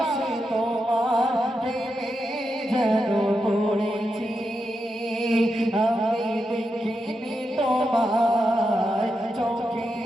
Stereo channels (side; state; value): both; normal; correlation 0.86